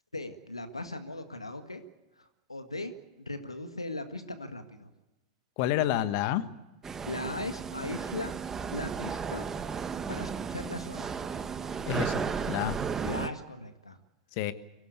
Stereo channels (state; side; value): normal; both; correlation 0.10